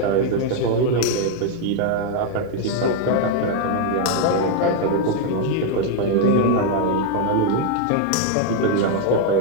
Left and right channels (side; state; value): both; different; correlation 0.00